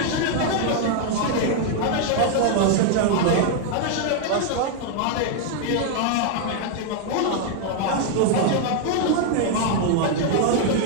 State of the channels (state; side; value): different; both; correlation 0.00